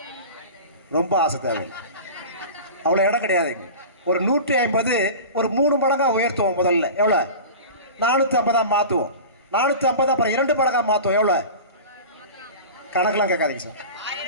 ரொம்ப ஆசை தேவை, அவ்வளோ இடம் கிடையாது. ஒரு 150 ஒரு 3 மடங்கா உயர்த்துவோம். முதல்ல எவ்வளோ? 450 மாற்றுவோம். 450 அப்புறம் 2 மடங்கா மாற்றுவோம். எவ்வளோ? கணக்கெல்லாம் கேட்காதீங்க சார்.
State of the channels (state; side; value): inverted; both; correlation -0.34